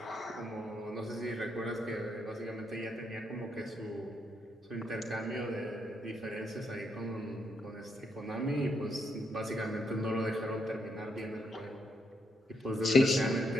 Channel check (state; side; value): normal; both; correlation 0.78